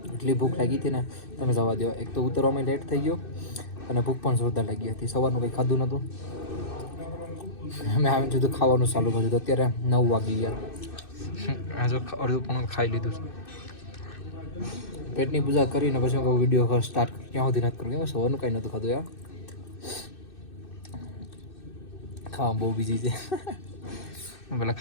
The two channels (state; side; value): late; right; 2.6 ms